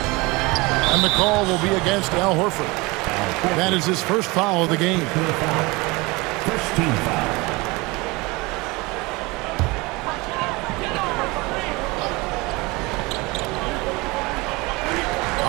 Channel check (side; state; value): left; quieter; 24.2 dB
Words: And the call will be against Al Horford. That is his first foul of the game. First team foul.